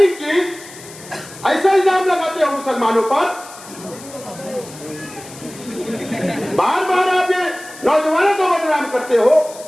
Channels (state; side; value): noise; left; hiss, 17 dB below the sound